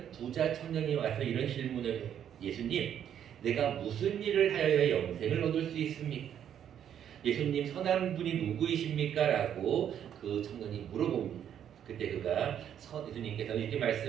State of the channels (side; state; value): left; quieter; 9.5 dB